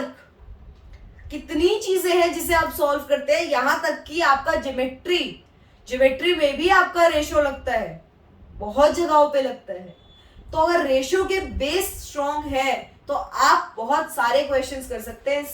कितनी चीजें हैं जिसे आप सॉल्व करते हैं। यहां तक कि आपका ज्योमेट्री में भी आपका रेशो लगता है, बहुत जगहों पे लगता है। तो अगर रेशो के बेस स्ट्रॉन्ग है तो आप बहुत सारे क्वेश्चंस कर सकते हैं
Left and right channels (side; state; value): both; identical; correlation 1.00